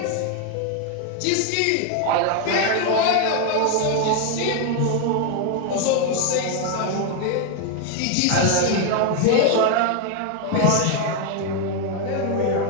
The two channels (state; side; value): different; both; correlation 0.01